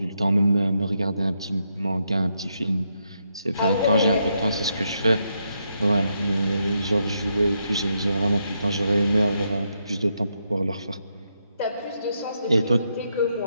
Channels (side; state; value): both; inverted; correlation -0.80